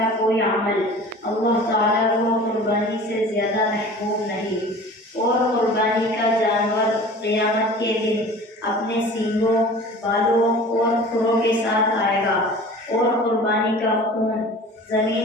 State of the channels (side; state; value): both; normal; correlation 0.42